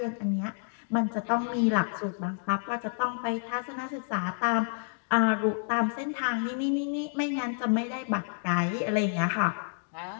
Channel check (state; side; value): silent; right; 58 dB below the other